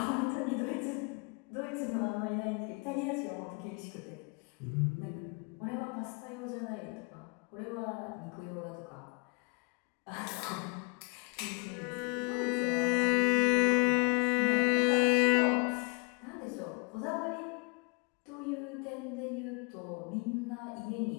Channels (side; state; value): right; quieter; 32.7 dB